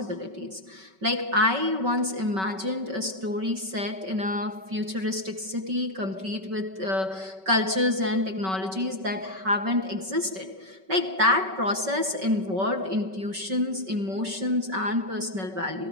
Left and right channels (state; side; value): late; left; 5.3 ms